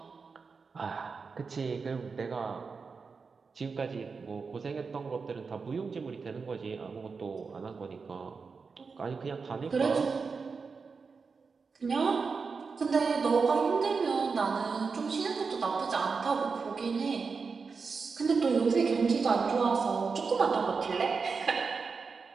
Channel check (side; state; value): left; quieter; 5.0 dB